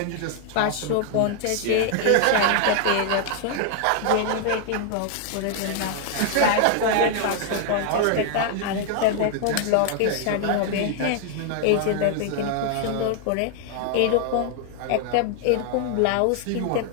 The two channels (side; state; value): both; different; correlation 0.00